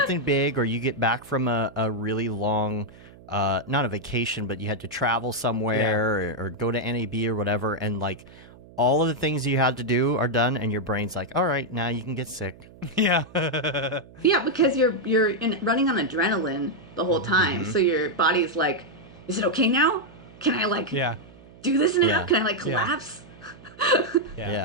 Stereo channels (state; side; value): noise; right; hum, 22 dB below the sound